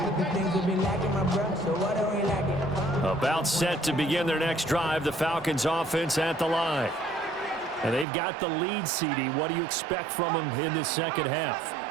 About set to begin their next drive, the Falcons offense at the line. And they've got the lead, CD. What do you expect from them in the second half?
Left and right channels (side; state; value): left; drops out; at 8.1 s